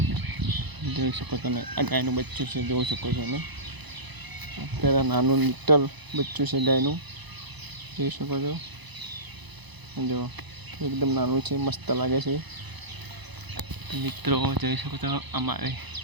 જોઈ શકો તમે, આ ગાયનું બચ્ચું છે, જોઈ શકો છો તમે. અત્યારે નાનું લિટલ બચ્ચું છે ગાયનું, જોઈ શકો છો. જો એકદમ નાનું છે, મસ્ત લાગે છે. મિત્રો જોઈ શકો છો, અમારે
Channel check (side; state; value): left; late; 1.0 ms